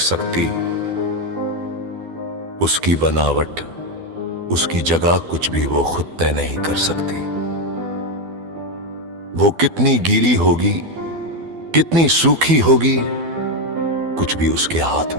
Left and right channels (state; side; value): late; left; 12 ms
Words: उसकी बनावट, उसकी जगह कुछ भी वो खुद तय नहीं कर सकती। वो कितनी गीली होगी, कितनी सूखी होगी, कुछ भी उसके हाथ